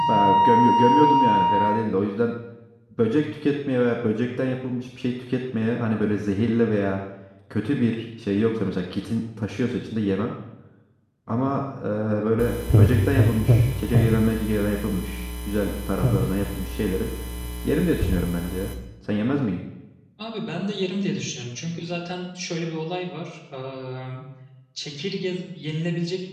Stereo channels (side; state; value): both; identical; correlation 1.00